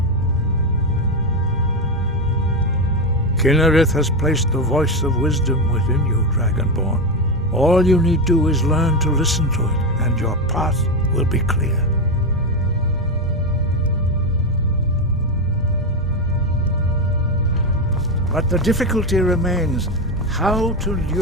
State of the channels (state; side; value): normal; both; correlation 0.11